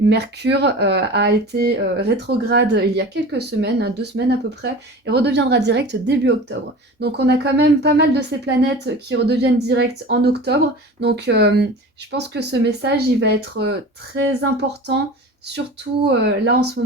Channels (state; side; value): normal; both; correlation 0.36